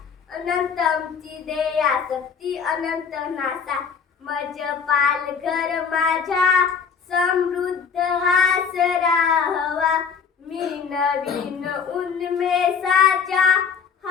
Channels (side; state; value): right; quieter; 6.3 dB